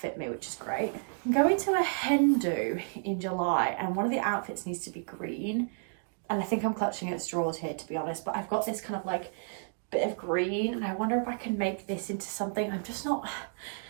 me, which is great. I'm going to a hen do in July, and one of the outfits needs to be green, and I think I'm clutching at straws here, to be honest, but I've got this kind of like bit of green, and I wonder if I can make this into something. I'm just not,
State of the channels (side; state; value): left; silent; digital silence